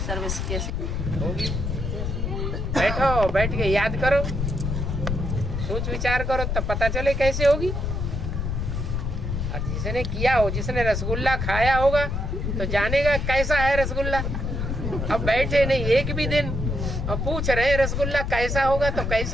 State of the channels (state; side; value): noise; left; rumble, 2 dB below the sound